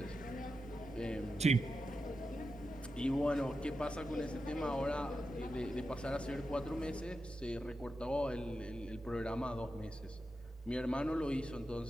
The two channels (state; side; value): normal; both; correlation 0.89